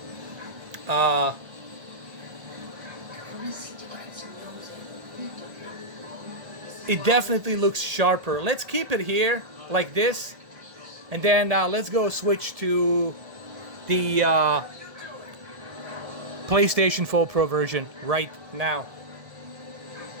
sharper. Let's keep it here like this, and then let's go switch to the PlayStation 4 Pro version right now.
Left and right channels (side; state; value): left; late; 1.8 ms